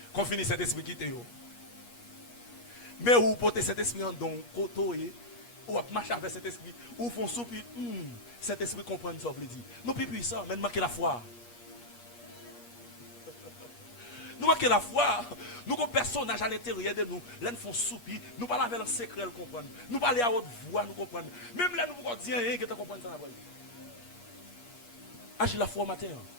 Qu'on finisse Saint-Esprit quitter. Mais vous portez cet esprit en don, ou marcher avec cet esprit, ou font soupi, cet esprit comprend ça, vous le dit. Nous plus puissants, mais nous manquons la foi. Nous manquons la foi. Nous avons un personnage à l'intérieur de nous. Là, nous faisons soupi, nous parlons avec le secret, nous comprenons. Nous parlons à haute voix, nous comprenons. Même là, nous pouvons dire rien que tu comprends ça. Agis la foi au matin.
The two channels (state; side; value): late; right; 8.4 ms